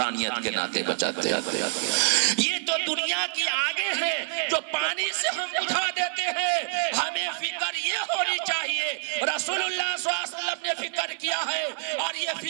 کے ناطے بچاتے ہیں. یہ تو دنیا کی آگے ہے جو پانی سے ہم بجھا دیتے ہیں. ہمیں فکر یہ ہونی چاہیے, رسول اللہ صلی اللہ علیہ وسلم نے فکر کیا ہے اور یہ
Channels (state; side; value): silent; left; 56 dB below the other